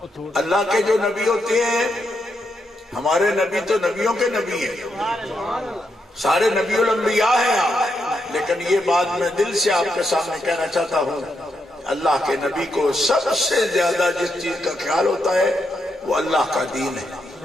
اللہ کے جو نبی ہوتے ہیں، ہمارے نبی تو نبیوں کے نبی ہیں، سارے نبی الانبیاء ہیں آپ، لیکن یہ بات میں دل سے آپ کے سامنے کہنا چاہتا ہوں، اللہ کے نبی کو سب سے زیادہ جس چیز کا خیال ہوتا ہے وہ اللہ کا دین ہے۔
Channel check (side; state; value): both; normal; correlation 0.82